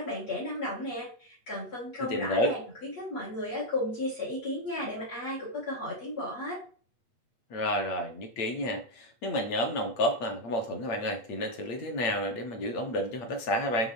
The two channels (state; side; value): late; right; 8.6 ms